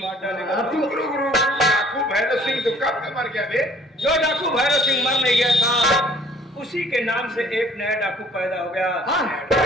मार डालेगा। गुरु गुरु डाकू भैरव सिंह तो कब का मर गया बे? जो डाकू भैरव सिंह मर नहीं गया था उसी के नाम से एक नया डाकू पैदा हो गया।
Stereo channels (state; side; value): normal; both; correlation 0.57